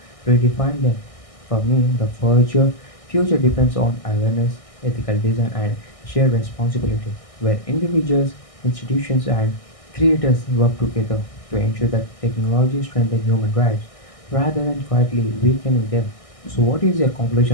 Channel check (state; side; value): late; right; 1.6 ms